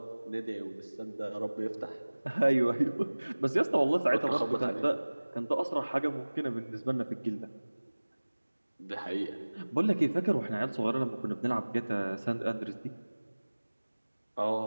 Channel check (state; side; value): inverted; both; correlation -1.00